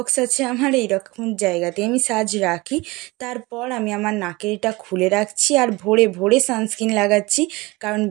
আছে আমার, এইরকম জায়গাতে আমি সাজ রাখি। তারপর আমি আমার নাকেরটা খুলে রাখছি আর ভোরে ভোরে সানস্ক্রিন লাগাচ্ছি, কারণ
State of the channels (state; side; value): quieter; left; 22.7 dB